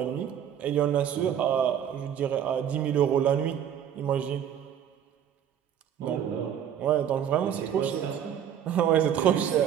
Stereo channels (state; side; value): quieter; left; 9.3 dB